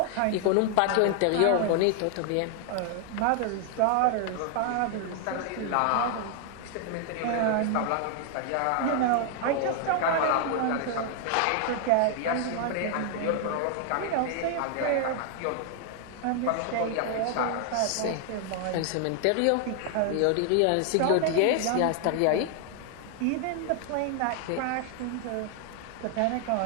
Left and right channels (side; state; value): both; different; correlation 0.00